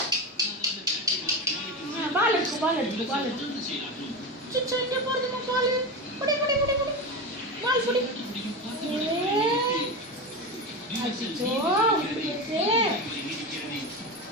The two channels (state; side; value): normal; both; correlation 0.20